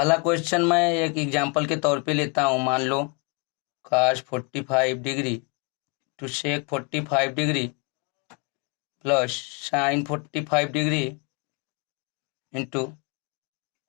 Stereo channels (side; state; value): right; quieter; 31.2 dB